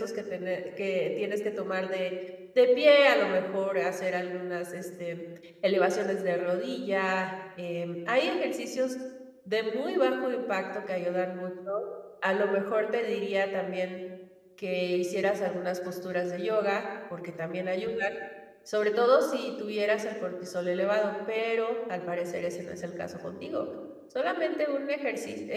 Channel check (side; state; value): both; identical; correlation 1.00